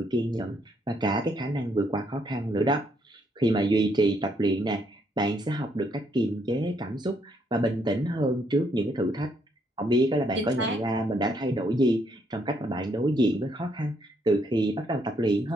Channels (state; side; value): normal; both; correlation 0.72